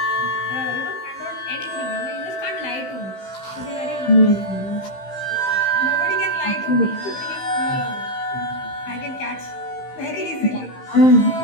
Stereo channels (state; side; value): late; right; 15 ms